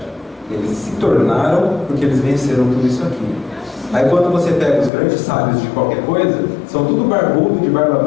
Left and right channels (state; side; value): drops out; right; at 4.9 s